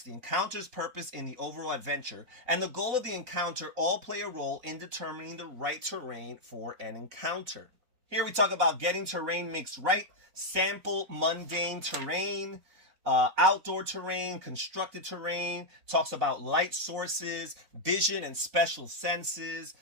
the encounter's purpose in the overall adventure, and the goal of the encounter all play a role in determining the right terrain for an encounter. Here we talk about getting terrain mixed right, sample mundane terrain, outdoor terrain, constructed terrain, talks about light sources, vision and special senses,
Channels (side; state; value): left; late; 4.0 ms